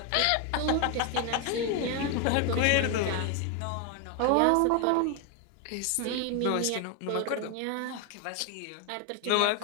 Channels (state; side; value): different; both; correlation 0.01